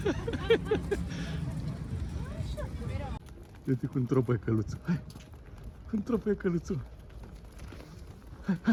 Uite cum tropăie căluțul. Hai! Cum tropăie căluțul. Hai,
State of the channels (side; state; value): both; identical; correlation 1.00